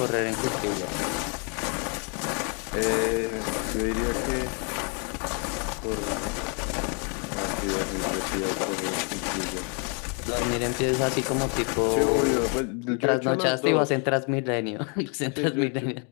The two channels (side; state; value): right; quieter; 36.8 dB